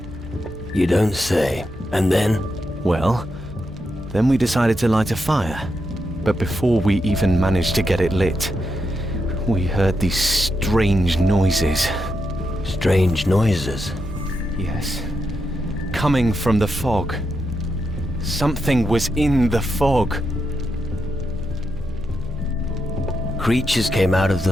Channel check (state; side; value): normal; both; correlation 0.84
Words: You don't say. And then? Well, then we decided to light a fire. But before we even managed to get it lit, we heard these strange noises. Strange noises? Yes. Coming from the fog. Something was in the fog. Creatures came out of the